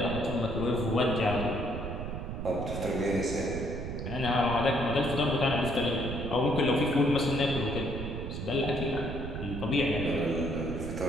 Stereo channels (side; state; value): right; noise; rumble, 6 dB below the sound